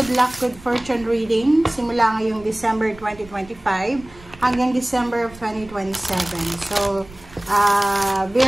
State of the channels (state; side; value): noise; right; rumble, 21 dB below the sound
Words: luck, good fortune reading. Simula ngayong December 2025 hanggang December of 2027. So,